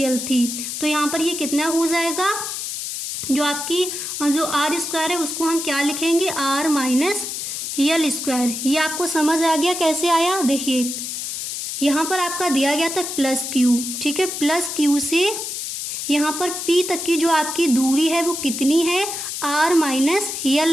थी। तो यहाँ पर ये कितना हो जाएगा, जो आपकी जो R स्क्वायर है उसको हम क्या लिखेंगे, R माइनस यल स्क्वायर। ये आपको समझ आ गया कैसे आया। देखिए यहाँ पर आपका दिया गया था प्लस Q, ठीक है। प्लस Q से यहाँ पर P तक की जो आपकी दूरी है वो कितनी है, आर माइनस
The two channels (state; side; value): noise; left; hiss, 5 dB below the sound